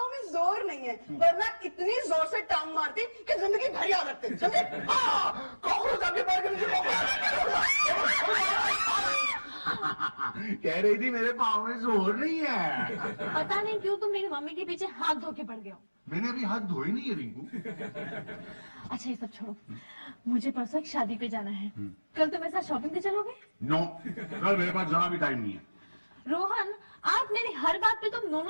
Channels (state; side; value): inverted; both; correlation -1.00